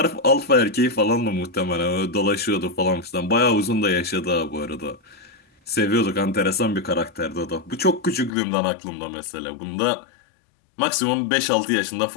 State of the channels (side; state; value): right; drops out; at 8.3 s